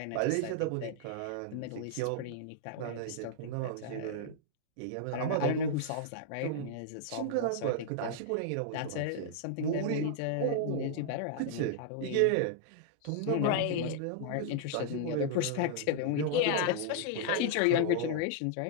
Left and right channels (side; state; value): both; different; correlation -0.01